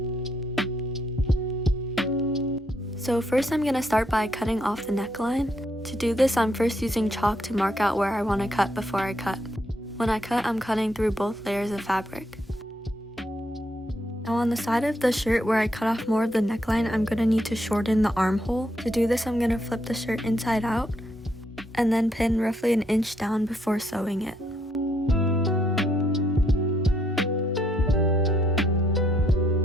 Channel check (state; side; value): normal; both; correlation 0.74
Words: So first I'm going to start by cutting off the neckline. To do this, I'm first using chalk to mark out where I want to cut before I cut. When I cut, I'm cutting through both layers of fabric. Now on the side of the shirt where I cut off more of the neckline, I'm going to need to shorten the armhole. To do this, I'm going to flip the shirt inside out and then pin roughly an inch down before sewing it.